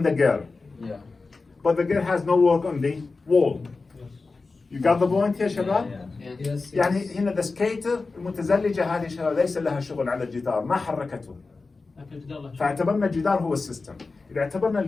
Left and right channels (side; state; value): right; quieter; 3.9 dB